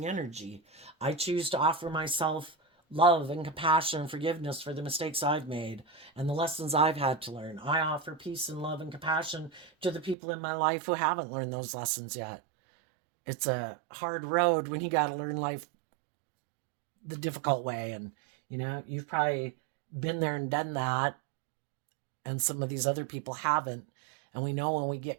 energy. I choose to offer myself love and compassion and forgiveness for the mistakes I've made and the lessons I've had to learn. I offer peace and love and compassion to the people in my life who haven't learned those lessons yet. It's a hard road when you got to learn life the difficult way. And, you've probably been there and done that, and some of these other people haven't. And we know when we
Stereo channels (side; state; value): left; drops out; at 10.2 s